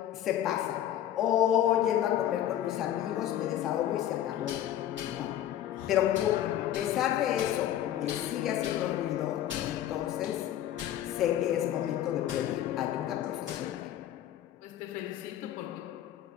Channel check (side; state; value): right; quieter; 11.8 dB